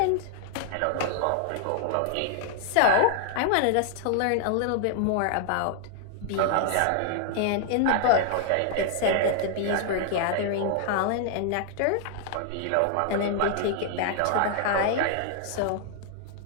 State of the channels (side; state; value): both; different; correlation -0.01